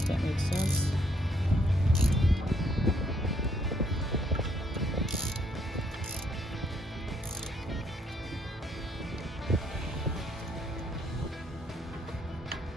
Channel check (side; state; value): both; normal; correlation 0.70